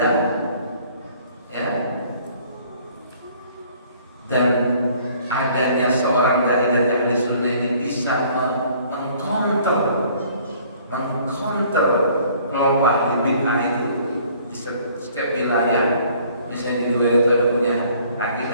ya, dan adanya seorang dari Ahli Sunnah ini bisa mengcounter kelompok ahli bid'ah itu di setiap wilayah. Misalnya di luar itu ada punya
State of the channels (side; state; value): both; inverted; correlation -0.57